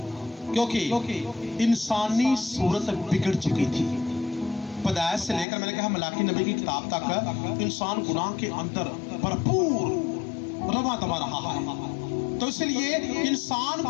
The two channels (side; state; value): right; drops out; at 5.5 s